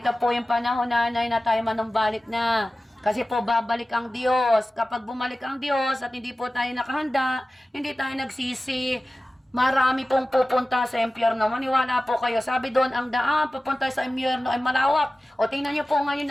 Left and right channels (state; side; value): normal; both; correlation 0.96